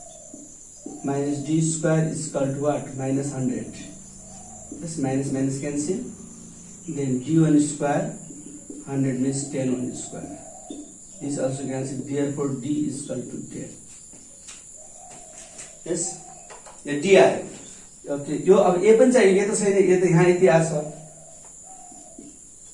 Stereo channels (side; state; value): both; identical; correlation 1.00